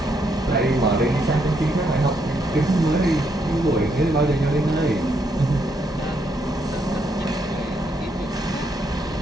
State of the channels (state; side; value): normal; both; correlation 0.76